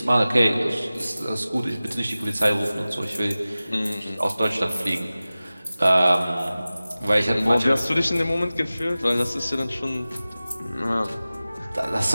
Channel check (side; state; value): both; inverted; correlation -0.97